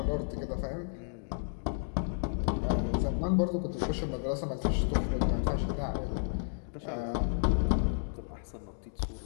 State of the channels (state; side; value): silent; right; digital silence